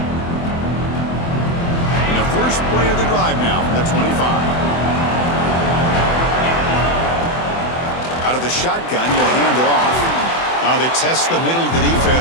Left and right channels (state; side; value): late; right; 24 ms